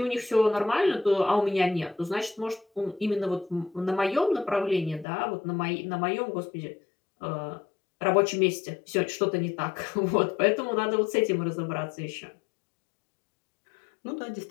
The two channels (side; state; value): right; drops out; at 5.1 s